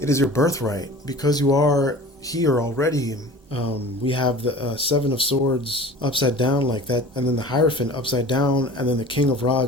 is your birthright. Because you are here already. We have the Seven of Swords upside down like that, and then the Hierophant upside down, and then the King of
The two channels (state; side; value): normal; both; correlation 0.40